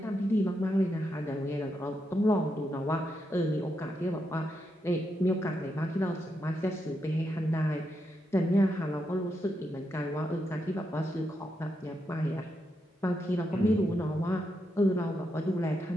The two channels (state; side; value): normal; both; correlation 0.83